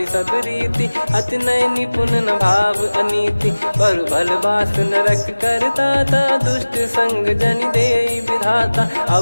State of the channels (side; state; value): both; inverted; correlation -1.00